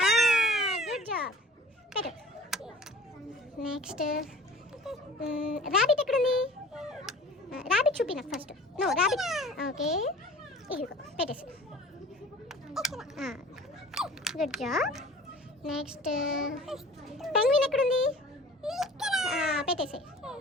Good job. పెట్టు. నెక్స్ట్ ర్యాబిట్ ఎక్కడుంది? ర్యాబిట్ చూపి నాకు ఫస్ట్. No, rabbit. ఓకే, ఇదిగో పెట్టేసి. Good job. నెక్స్ట్ పెంగ్విన్ ఎక్కడుంది? పెట్టేసి.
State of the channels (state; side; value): normal; both; correlation 0.44